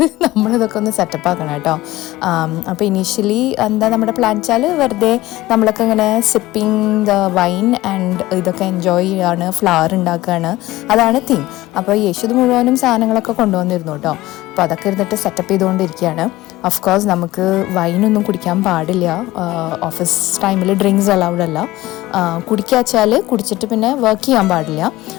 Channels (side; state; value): right; quieter; 17.5 dB